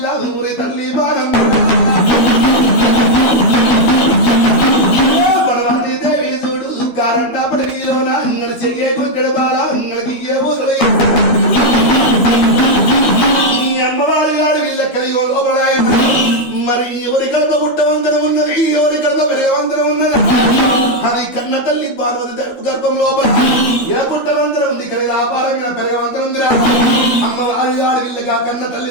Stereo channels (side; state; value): right; late; 12 ms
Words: ఊరి తల్లి బాణమ్మ మరి ఎవరి కడత పుట్టవంతరం ఉన్నది ఎవరి కడత పెరగవంతరం ఉన్నది అది కన్న తల్లి పార్వతి తరపు గర్భం లోపల ఏ పుట్టవంతరం ఉంది కానీ వ్యాపారమైన పెరగవంతరం ఉందిరా అమ్మ వాళ్ళ వీళ్ళగా కన్న తల్లి